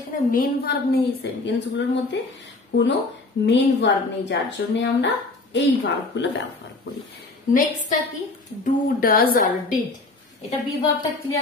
এখানে মেইন ভার্ব নেই, সেন্টেন্স গুলোর মধ্যে কোনো মেইন ভার্ব নেই, যার জন্য আমরা এই ভার্ব গুলো ব্যবহার করি। নেক্সটটা কি, ডু, ডাজ আর ডিড, এটা বি ভার্বটা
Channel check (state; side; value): quieter; right; 3.3 dB